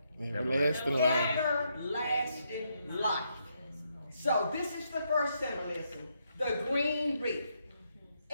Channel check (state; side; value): inverted; both; correlation -0.78